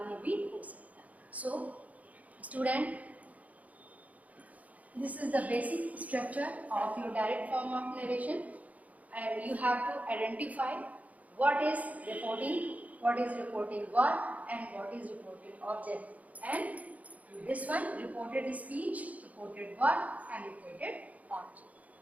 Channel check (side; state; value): left; late; 0.072 ms